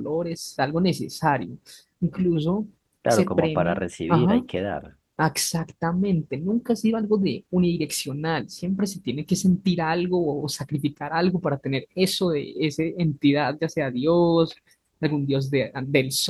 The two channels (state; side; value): identical; both; correlation 1.00